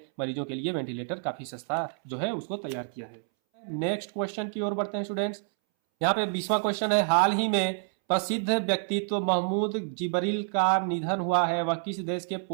मरीजों के लिए वेंटिलेटर काफ़ी सस्ता जो है उसको तैयार किया है। नेक्स्ट क्वेश्चन की ओर बढ़ते हैं स्टूडेंट्स। यहाँ पे 20वां क्वेश्चन है, हाल ही में प्रसिद्ध व्यक्तित्व महमूद जिब्रील का निधन हुआ है, वह किस देश के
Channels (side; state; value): left; silent; 59 dB below the other